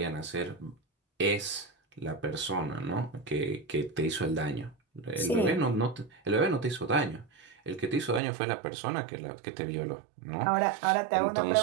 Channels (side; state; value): left; drops out; at 8.2 s